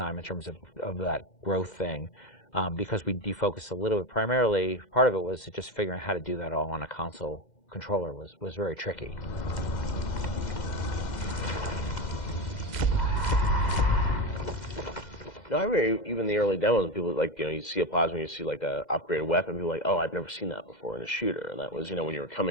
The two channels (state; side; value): late; right; 2.0 ms